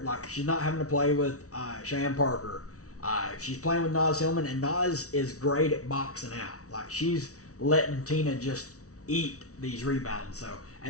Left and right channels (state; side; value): late; right; 0.65 ms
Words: Like, she's not having to play with Cheyenne Parker. She's playing with Naz Hillman, and Naz is great at boxing out. Like, she's letting Tina just eat these rebounds. So